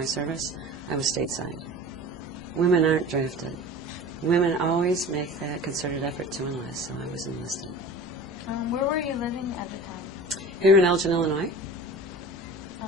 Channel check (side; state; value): both; normal; correlation 0.38